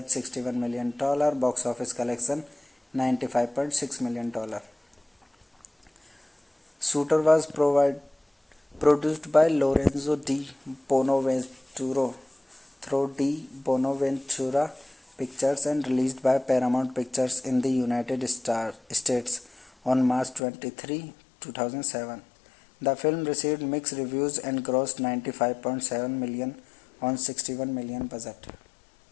$61 million. Box office collection $95.6 million. Shooter was produced by Lorenzo Di Bonaventura through Di Bonaventura Pictures and released by Paramount Pictures in the United States on March 23, 2007. The film received mixed reviews and grossed $95.7 million on $61 million budget.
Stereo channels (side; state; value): right; drops out; at 20.4 s